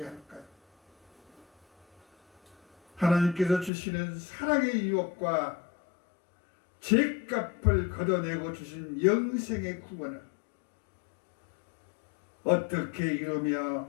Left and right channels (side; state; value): right; drops out; at 3.7 s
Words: 할까요? 하나님께서 주시는 사랑의 유혹과 죄값을 걷어내고 주신 영생의 구원을 어떻게 이루며